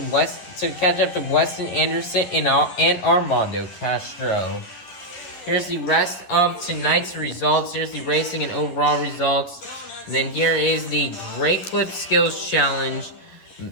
Weston Anderson and Armando Castro. Here's the rest of tonight's results. Here's the racing and overall results. And then here is the Great Clip Skills Challenge,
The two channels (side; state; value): right; late; 11 ms